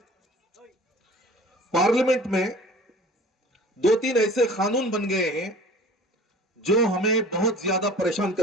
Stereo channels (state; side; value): normal; both; correlation 0.45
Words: پارلیمنٹ میں 2-3 ایسے قانون بن گئے ہیں جو ہمیں بہت زیادہ پریشان